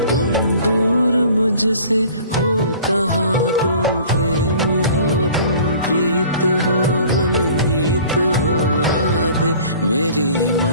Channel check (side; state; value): both; inverted; correlation -0.48